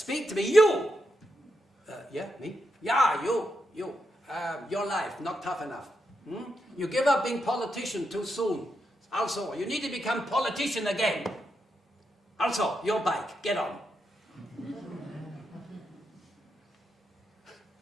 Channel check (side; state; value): both; normal; correlation 0.84